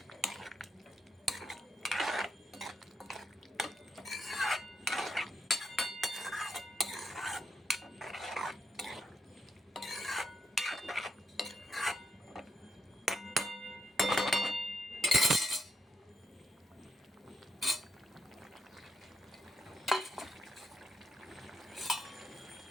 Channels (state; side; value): normal; both; correlation 0.80